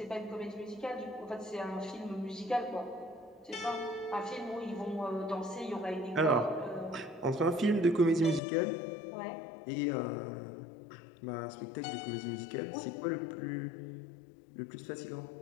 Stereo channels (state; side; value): drops out; right; at 8.4 s